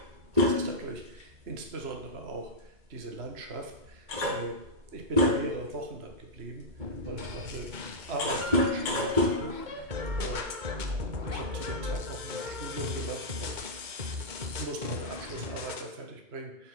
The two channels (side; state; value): left; late; 2.2 ms